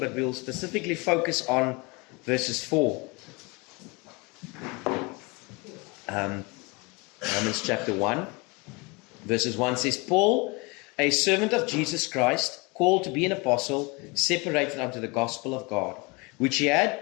we'll specifically focus on verses 4. Romans chapter 1, verses 1 says, Paul, a servant of Jesus Christ, called to be an apostle, separated unto the gospel of God, which he had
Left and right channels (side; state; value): right; quieter; 27.6 dB